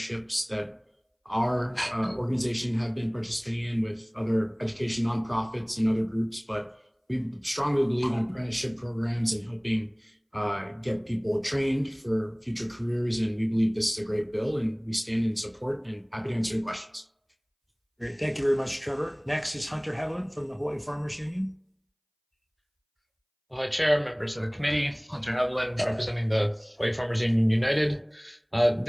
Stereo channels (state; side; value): identical; both; correlation 1.00